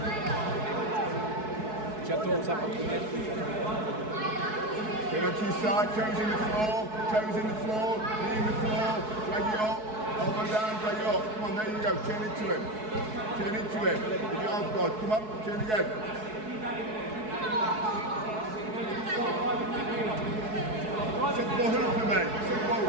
Turn onto your side, toes in the floor, knee in the floor, drag it up, elbow down, drag it up. Come on, there you go, turn into him. With your arms guard, come on, turn again. Set the ball up for me, set the ball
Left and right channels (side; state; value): left; late; 4.7 ms